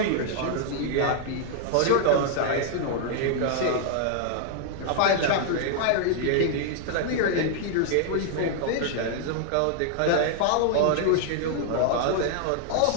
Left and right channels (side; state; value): both; different; correlation -0.01